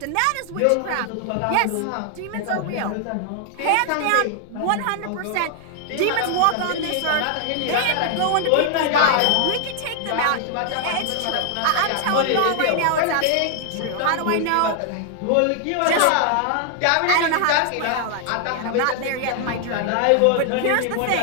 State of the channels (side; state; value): both; different; correlation 0.00